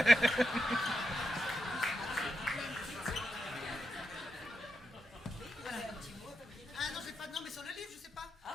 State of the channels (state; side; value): normal; both; correlation 0.87